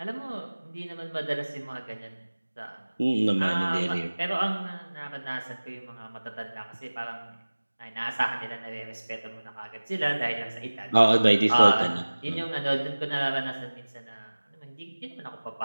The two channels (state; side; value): inverted; both; correlation -1.00